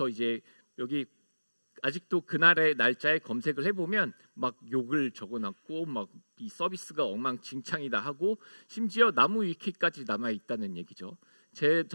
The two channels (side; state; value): both; inverted; correlation -1.00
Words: 이제 여기 아직도 그날의 날짜에 검색을 해보면 막 욕을 적어놨고 막 이 서비스가 엉망진창이다 하고 심지어 나무 위키까지 남아 있다는 얘기죠.